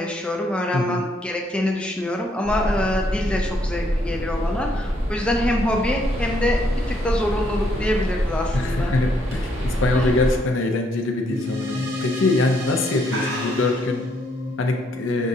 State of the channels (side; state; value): both; normal; correlation 0.71